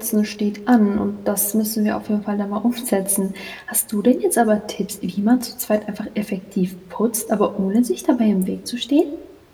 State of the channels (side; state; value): both; identical; correlation 1.00